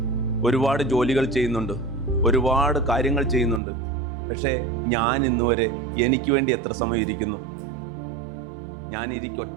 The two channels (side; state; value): left; drops out; at 3.6 s